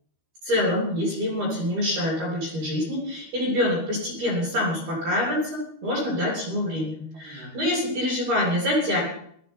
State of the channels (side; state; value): left; late; 13 ms